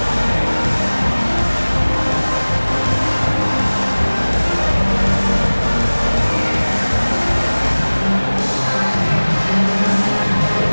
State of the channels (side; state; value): both; inverted; correlation -1.00